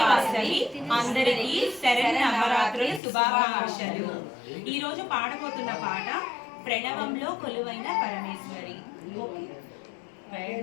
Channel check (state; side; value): drops out; right; at 3.0 s